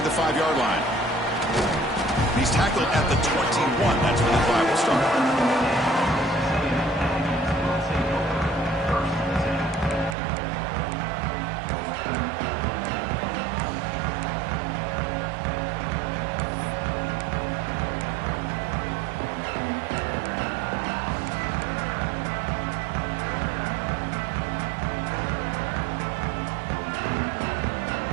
the 5-yard line. He's tackled at the 21. That's where the drive will start.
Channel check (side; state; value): left; drops out; at 10.2 s